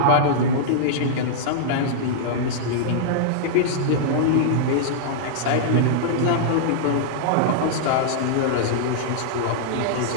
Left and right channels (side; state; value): both; different; correlation -0.02